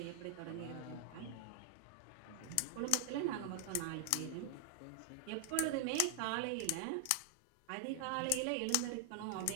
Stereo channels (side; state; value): both; different; correlation 0.00